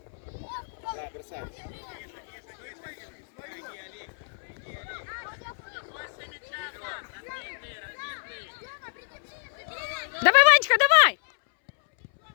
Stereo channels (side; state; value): right; silent; 59 dB below the other